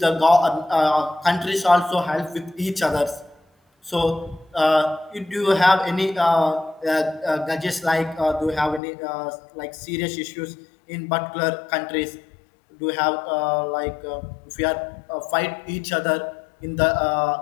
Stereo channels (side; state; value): right; drops out; at 8.8 s